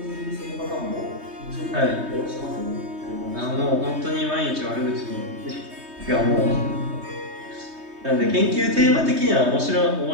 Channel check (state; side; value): late; left; 3.2 ms